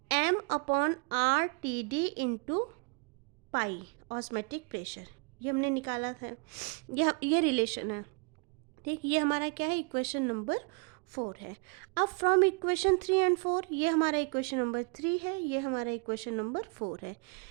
M upon RTD into pi osmotic pressure. ये हमने निकाला था, ये रिलेशन है। ठीक, ये हमारा क्या है? इक्वेशन नंबर 4 है। अब फ्रॉम इक्वेशन 3 एंड 4, ये हमारा इक्वेशन नंबर 3 है, ये हमारा इक्वेशन नंबर 4 है।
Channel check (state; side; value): quieter; left; 34.1 dB